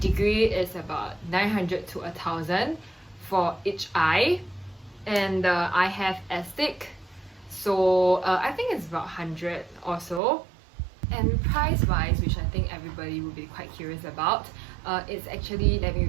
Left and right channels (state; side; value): drops out; left; at 10.2 s